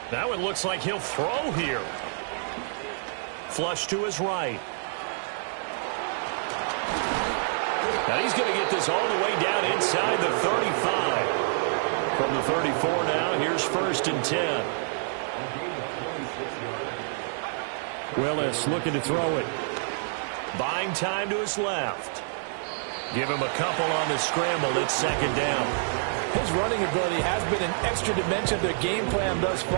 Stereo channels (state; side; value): silent; left; digital silence